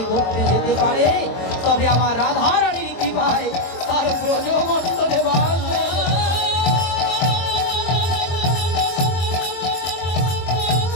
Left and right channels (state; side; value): late; right; 23 ms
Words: করতে যেতে পারে, তবে আমার রাধারানীর কৃপায় তার ব্রজমণ্ডলে বাস।